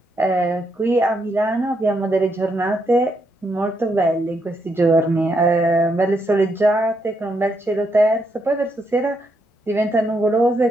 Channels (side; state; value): both; normal; correlation 0.78